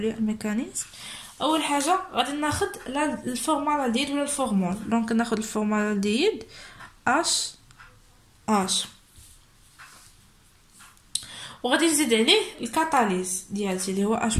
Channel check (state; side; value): identical; both; correlation 1.00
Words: الميكانيزم. اول حاجه غادي ناخذ الفورمال الديد ولا الفورمول. دونك ناخذ الفورمال الديد اش وغادي نزيد عليه الكاتاليز ديالتي اللي هو اش